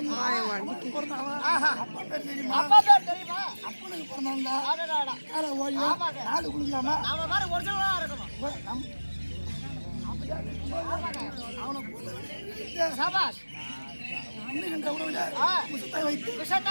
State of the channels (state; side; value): inverted; both; correlation -1.00